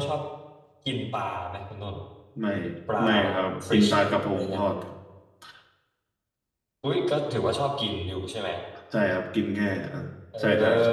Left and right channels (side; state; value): both; identical; correlation 1.00